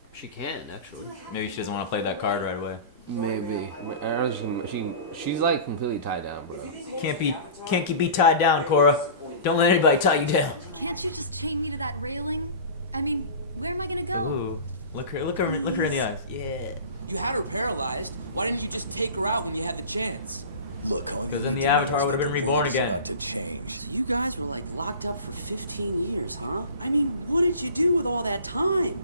She can actually. Maybe she doesn't want to play that card right away. Maybe. I don't know, she's like completely tied down, bro. Can't be tied down, Korra. Don't let anybody tie you down. Can't you just chain me to that railing? I mean, where am I gonna go? Ooh, look her in the eyes. Yeah. You had her paralyzed. Why didn't you just take her out when you had the chance? Look, all you Because need then the to know Avatar is would've that been the reborn world is again. about to change. So you guys were like locked up for 15 years, huh? I mean, what did you do with all that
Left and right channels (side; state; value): both; inverted; correlation -0.37